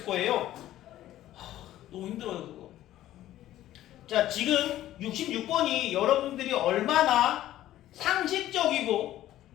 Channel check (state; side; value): quieter; right; 13.7 dB